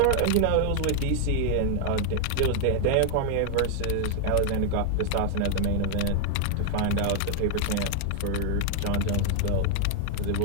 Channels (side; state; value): both; different; correlation 0.00